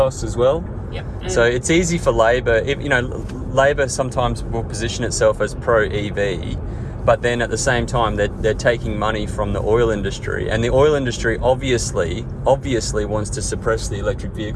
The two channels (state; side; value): identical; both; correlation 1.00